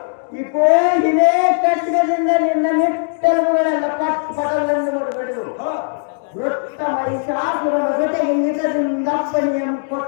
ಇಕೋ ಇದೇ ಕಟ್ಟಡದಿಂದ ನಿನ್ನ ನಿಟ್ಟಲುಗಳೆಲ್ಲ ಪಟಲನ್ನು ಮರುಗಡೆದು ವೃತ್ತ ಮಹಿಷಾಸುರನ ಜೊತೆಗೆ ನಿಜದಿಂದಪ್ಪನೆಯನ್ನು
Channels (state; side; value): silent; right; digital silence